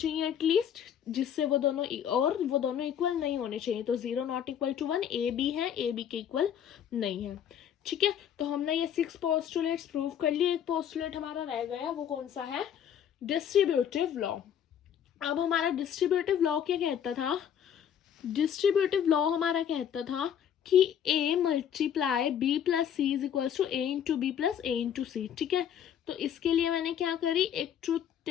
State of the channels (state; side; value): quieter; right; 9.1 dB